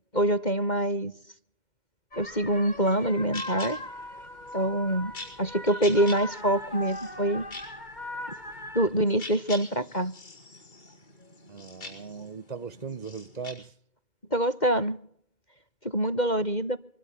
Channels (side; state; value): right; late; 2.2 ms